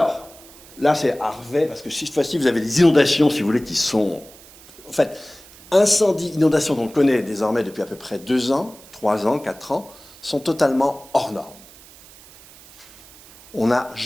là c'est Harvey, parce que cette fois-ci vous avez des inondations, si vous voulez, qui sont... En fait, incendies, inondations qu'on connaît désormais depuis à peu près 2 ans, 3 ans, 4 ans, sont totalement hors normes. On n'a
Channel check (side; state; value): right; noise; hiss, 22 dB below the sound